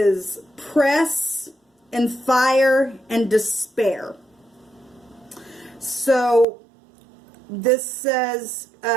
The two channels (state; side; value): drops out; left; at 6.5 s